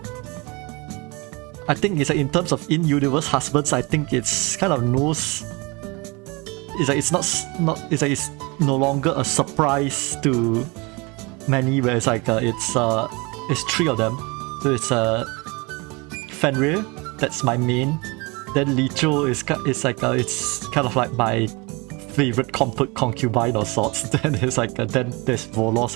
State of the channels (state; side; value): quieter; left; 26.5 dB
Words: I think it's like in terms of in-universe husbands, I think it's kind of knows it's not it's no longer a surprise to many, where it's it's three of them. So it's Fenrir, that's my main. Then Licho is it's kind of like my favorite concubine or sorts. Then it's then there's